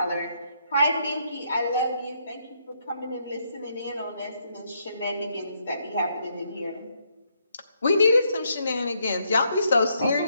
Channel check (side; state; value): both; inverted; correlation -0.75